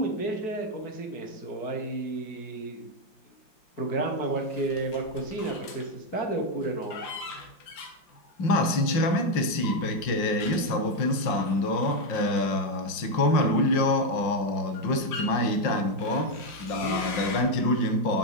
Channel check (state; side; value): late; right; 5.5 ms